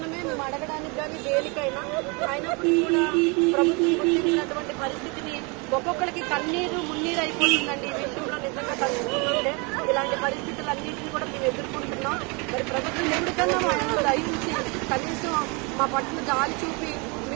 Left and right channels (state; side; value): quieter; left; 30.5 dB